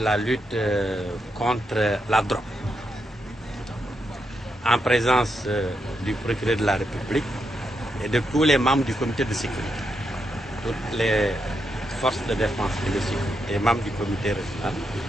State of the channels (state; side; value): normal; both; correlation 0.82